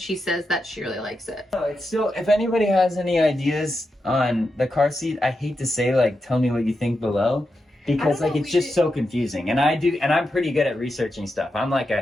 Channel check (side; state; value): both; normal; correlation 0.87